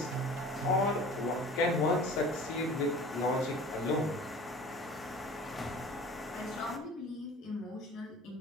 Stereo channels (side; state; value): both; normal; correlation 0.42